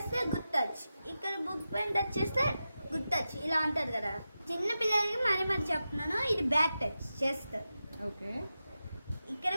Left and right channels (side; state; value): both; inverted; correlation -0.91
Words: గుడ్ టచ్, ఇక్కడ బుక్ పైన టచ్ చేస్తే గుడ్ టచ్, ఇలా ఉంటుంది కదా. చిన్న పిల్లలకి మరి చెప్తున్నాను, ఇది బ్యాడ్ టచ్ చేస్తారు. ఓకే, ఇక్కడ